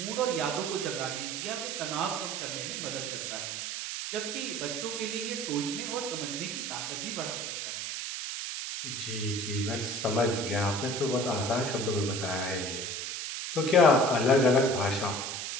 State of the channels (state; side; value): noise; right; hiss, 4 dB below the sound